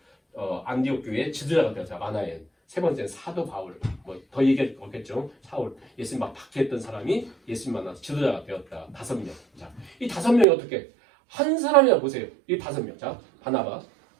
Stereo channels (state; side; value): drops out; left; at 10.5 s